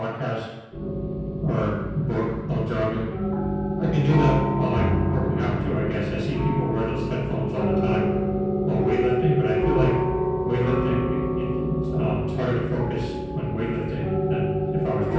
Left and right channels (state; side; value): identical; both; correlation 1.00